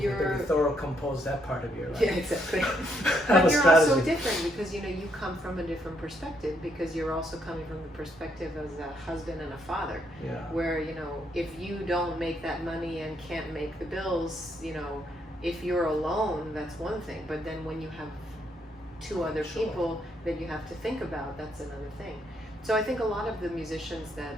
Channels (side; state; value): both; normal; correlation 0.74